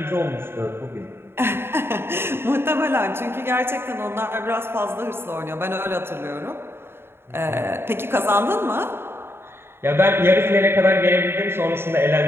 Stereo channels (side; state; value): left; late; 0.11 ms